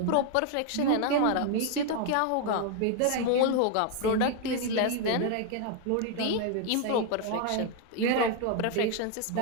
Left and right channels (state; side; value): different; both; correlation 0.00